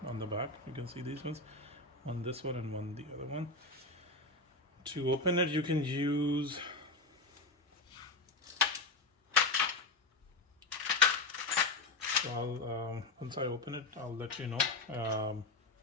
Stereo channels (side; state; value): right; quieter; 3.2 dB